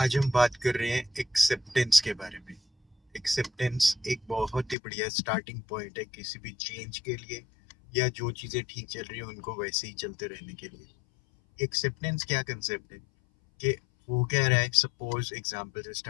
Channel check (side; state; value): right; drops out; at 4.8 s